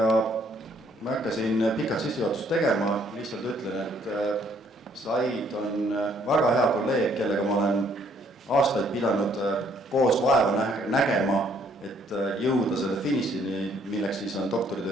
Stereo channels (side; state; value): both; normal; correlation 0.65